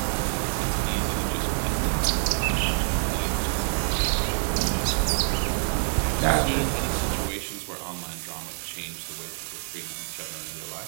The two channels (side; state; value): left; silent; digital silence